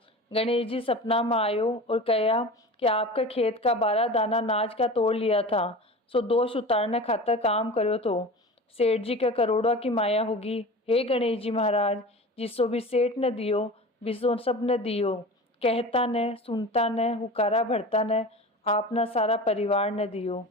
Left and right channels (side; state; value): both; normal; correlation 0.34